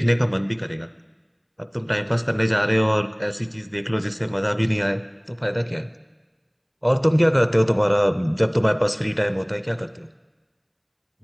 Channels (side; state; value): both; identical; correlation 1.00